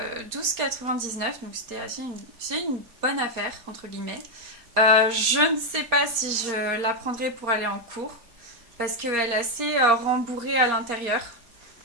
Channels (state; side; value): late; left; 4.3 ms